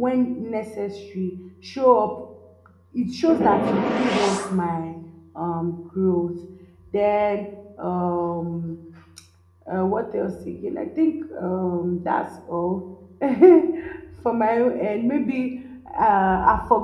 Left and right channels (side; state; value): both; identical; correlation 1.00